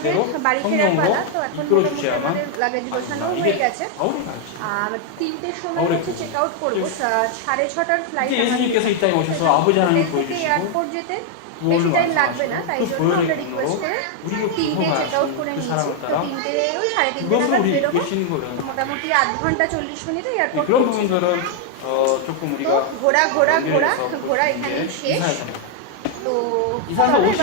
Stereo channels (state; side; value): different; both; correlation 0.00